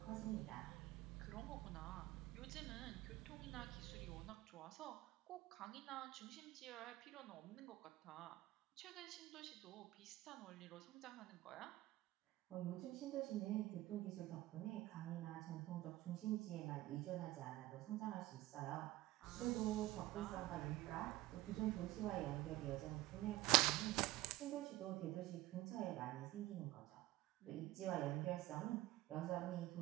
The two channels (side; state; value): left; quieter; 17.1 dB